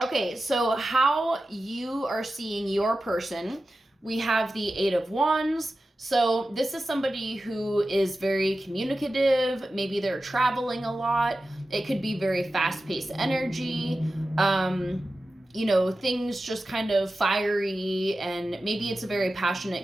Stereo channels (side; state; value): both; normal; correlation 0.93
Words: how you are seeing your person, we have the Eight of Wands. So this is somebody who is very communicative. Maybe they're traveling a lot. It could be very fast-paced energy. You know, things just kind of fiery, and maybe it's a very